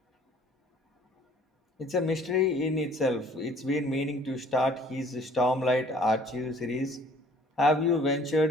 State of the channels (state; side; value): normal; both; correlation 0.55